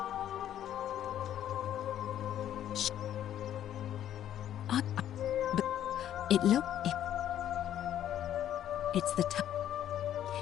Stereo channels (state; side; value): quieter; right; 11.1 dB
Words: But... It look... It's the time.